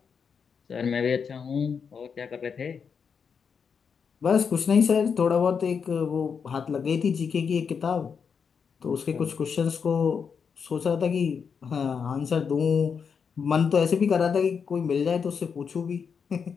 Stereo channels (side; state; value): right; quieter; 6.3 dB